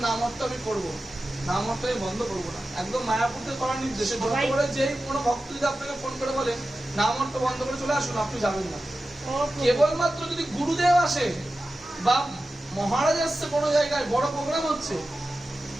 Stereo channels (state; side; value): normal; both; correlation 0.94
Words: নাম অর্থ আমি করবো, নাম অর্থ আমি বন্ধ করবো না। একদম মায়াপুরতে করার নির্দেশে যত করে যেই কোনো ভক্ত যদি আপনাকে ফোন করে বলে নাম অর্থ বন্ধ করে চলে আসুন, আপনি যাবেন না। কেবলমাত্র যদি গুরুদেব আসে বা মহারাজ আসছে কোনো জায়গায় বড় প্রোগ্রাম হচ্ছে,